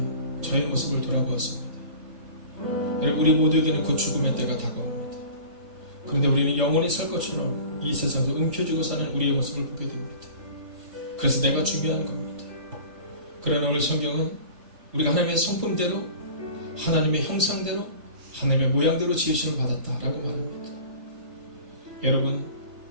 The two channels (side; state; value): left; late; 3.2 ms